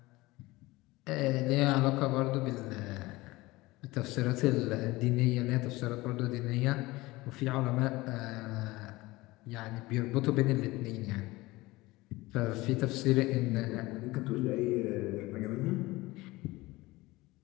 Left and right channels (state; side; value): quieter; right; 20.3 dB